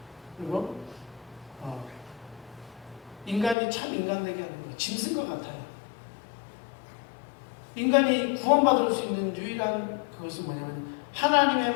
그리고 인간이 참 인간 되게 하는 것, 짐승과 같아요. 인간이 구원받을 수 있는 유일한 그것은 뭐냐면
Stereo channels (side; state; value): right; drops out; at 3.6 s